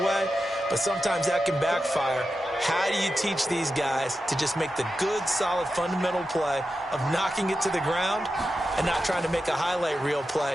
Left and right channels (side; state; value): both; normal; correlation 0.90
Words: But sometimes that can backfire. How do you teach these guys to just make the good, solid, fundamental play of knocking it to the ground and not trying to make a highlight reel